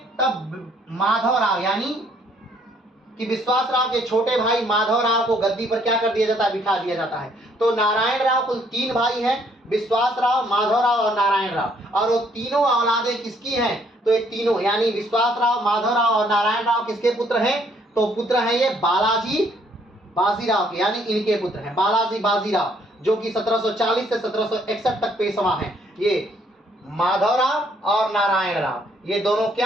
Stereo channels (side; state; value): both; normal; correlation 0.66